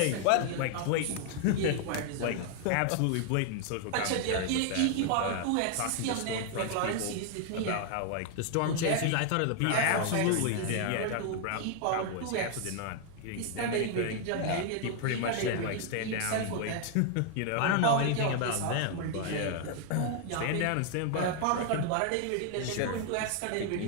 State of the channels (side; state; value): both; different; correlation 0.00